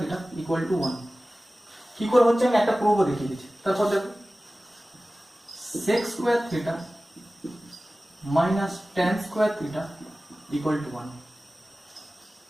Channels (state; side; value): normal; both; correlation 0.97